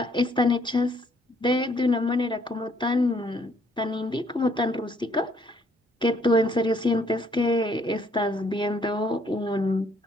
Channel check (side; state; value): both; normal; correlation 0.66